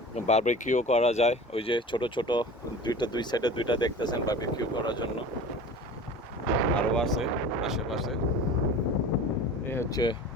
বারবিকিউ করা যায়। ওই যে ছোট ছোট দুই সাইডে দুইটা দেখতেছেন বারবিকিউ করার জন্য। আরও আছে আশেপাশে। এই হচ্ছে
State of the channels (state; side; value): normal; both; correlation 0.37